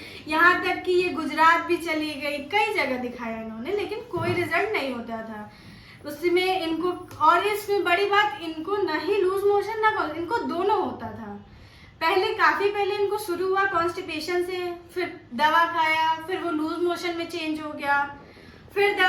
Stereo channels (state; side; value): identical; both; correlation 1.00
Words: यहाँ तक कि ये गुजरात भी चली गई, कई जगह दिखाया इन्होंने, लेकिन कोई रिजल्ट नहीं होता था उसमें इनको। और इसमें बड़ी बात, इनको ना ही लूज मोशन ना इनको दोनों होता था। काफी पहले इनको शुरू हुआ कॉन्स्टिपेशन से, फिर दवा खाया, फिर वो लूज मोशन में चेंज हो गया, फिर